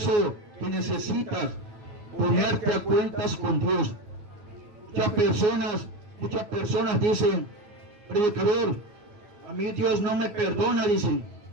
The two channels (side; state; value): left; late; 9.5 ms